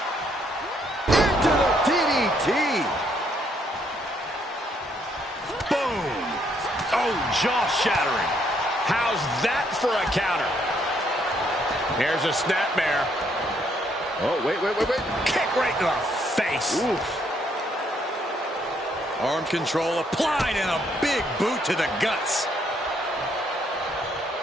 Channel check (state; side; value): normal; both; correlation 0.71